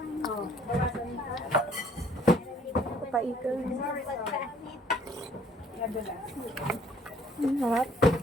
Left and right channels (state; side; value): normal; both; correlation 0.60